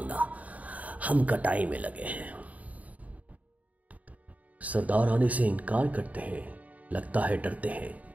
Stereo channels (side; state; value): left; late; 0.071 ms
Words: हम कटाई में लगे हैं। सरदार आने से इनकार करते हैं, लगता है डरते हैं,